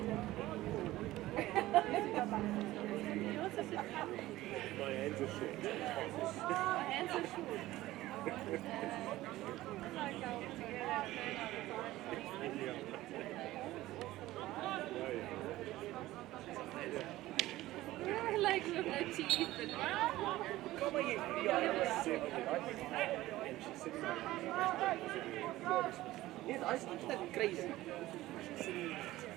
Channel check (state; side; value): quieter; left; 16.6 dB